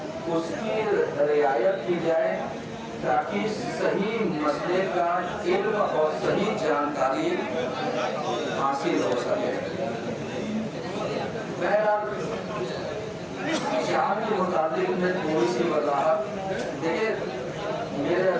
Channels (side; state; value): both; identical; correlation 1.00